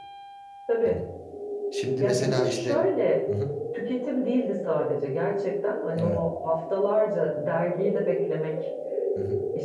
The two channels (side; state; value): both; identical; correlation 1.00